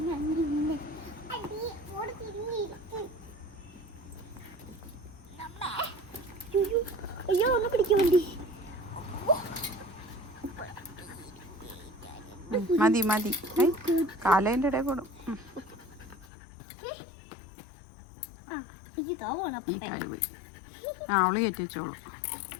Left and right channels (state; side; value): drops out; right; at 16.2 s